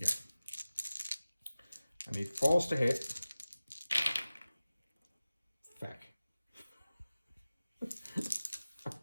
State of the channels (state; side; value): inverted; both; correlation -0.97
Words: I need 4s to hit. Feck.